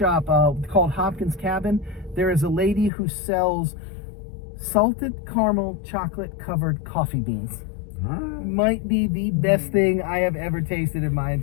called Hopkins Cabin, there is a lady who sells salted caramel chocolate covered coffee beans. Might be the best thing I have ever tasted in my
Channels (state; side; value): drops out; right; at 2.9 s